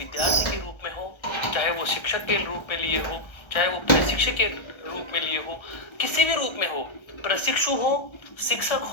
के रूप में हो, चाहे वो शिक्षक के रूप में लिए हो, चाहे वो प्रशिक्षक के रूप में लिए हो, किसी भी रूप में हो, प्रशिक्षु हो, शिक्षक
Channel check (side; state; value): right; late; 1.3 ms